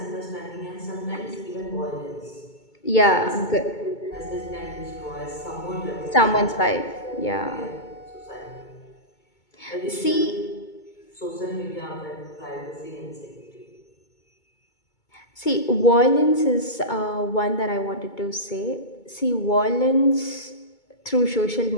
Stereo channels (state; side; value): late; right; 2.2 ms